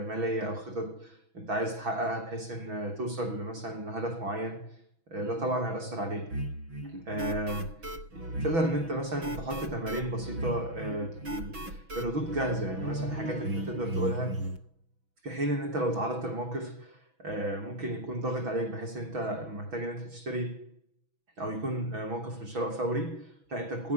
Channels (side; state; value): left; late; 6.1 ms